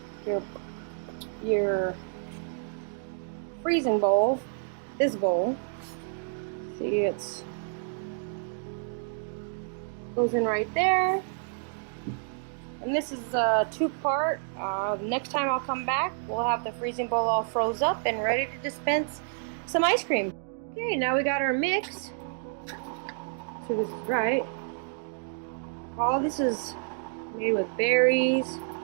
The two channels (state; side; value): silent; left; digital silence